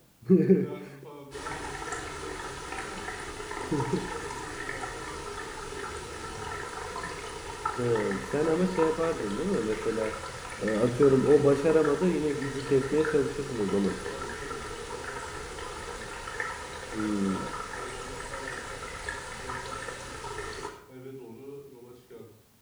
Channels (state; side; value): identical; both; correlation 1.00